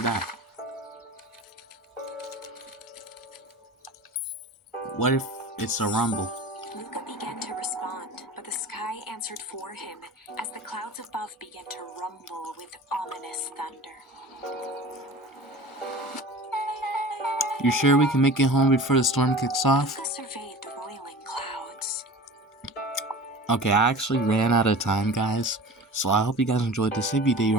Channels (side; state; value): both; normal; correlation 0.38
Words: that. What if it's a Rumble? Luca began to respond, but the sky answered for him as the clouds above began to rumble with ominous thunder. You sure we can make it home before the storm kicks off? Luca surveyed the roiling clouds. Okay, I actually ran out of time, guys. So I hope you guys enjoyed this. If you did, you